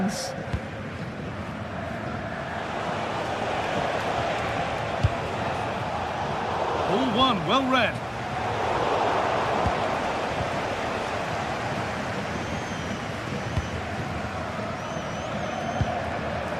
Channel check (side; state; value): both; identical; correlation 1.00